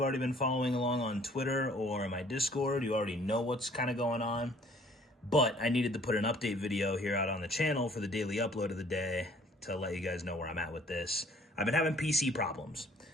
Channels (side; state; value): both; normal; correlation 0.57